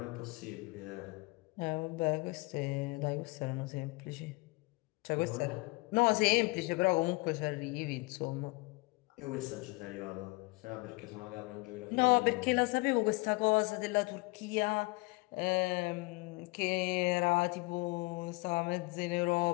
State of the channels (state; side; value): quieter; right; 26.0 dB